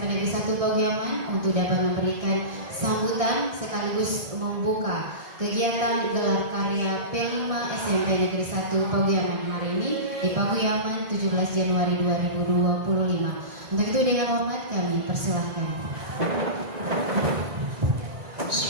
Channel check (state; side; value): late; left; 2.8 ms